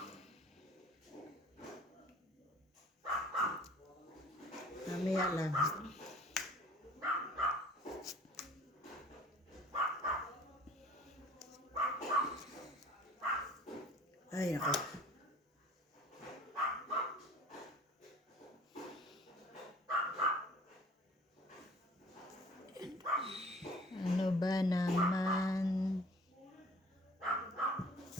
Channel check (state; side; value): normal; both; correlation 0.49